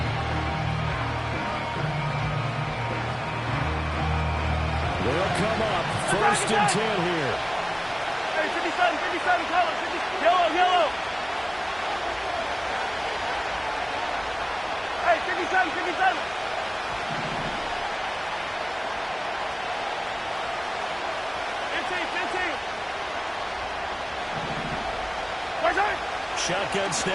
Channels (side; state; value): both; identical; correlation 1.00